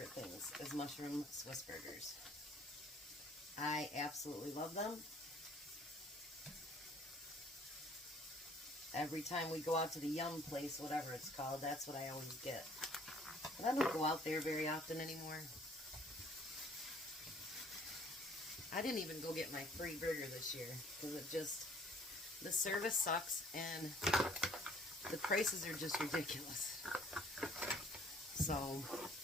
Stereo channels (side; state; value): both; normal; correlation 0.57